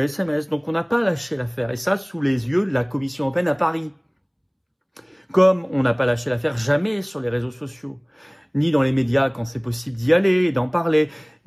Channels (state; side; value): identical; both; correlation 1.00